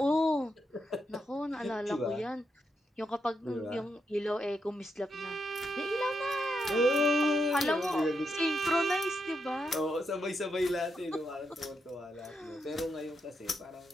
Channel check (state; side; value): normal; both; correlation 0.83